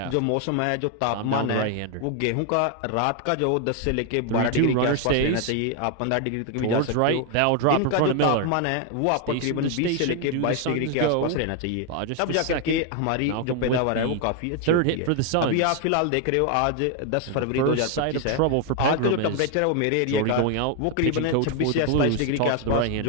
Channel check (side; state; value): both; different; correlation 0.00